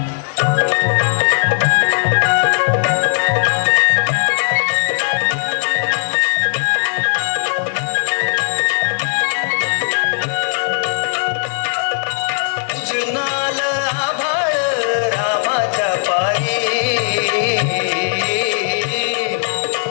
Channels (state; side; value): silent; right; 68 dB below the other